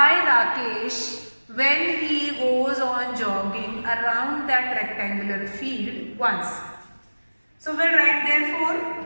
Rakesh when he goes on jogging around that rectangular field once. So we'll write therefore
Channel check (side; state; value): both; inverted; correlation -1.00